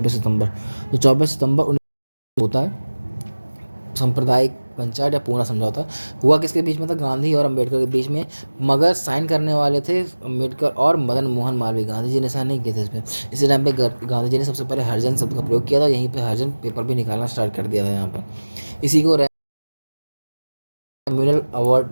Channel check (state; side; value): inverted; both; correlation -1.00